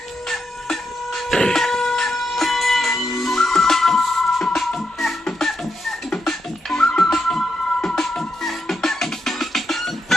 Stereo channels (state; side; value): normal; both; correlation 0.84